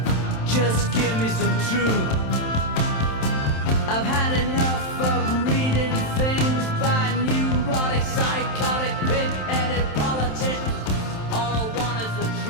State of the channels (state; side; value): late; right; 27 ms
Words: Just give me some truth. I've had enough of reading things by neurotic, psychotic, pig-headed politicians. All I want is the